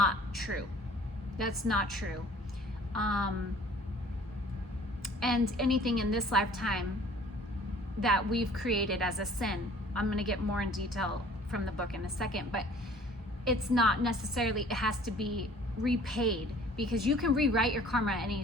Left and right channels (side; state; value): both; normal; correlation 0.51